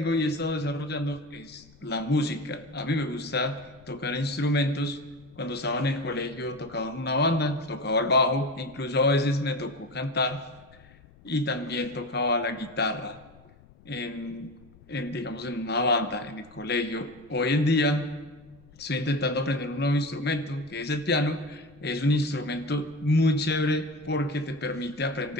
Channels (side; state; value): left; noise; rumble, 25 dB below the sound